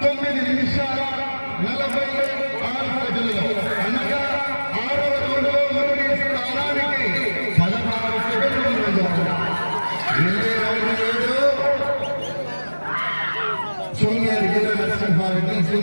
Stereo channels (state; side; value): inverted; both; correlation -1.00